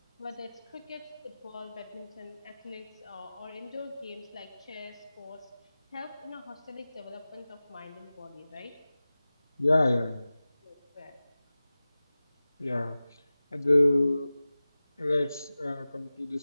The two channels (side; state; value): both; inverted; correlation -0.97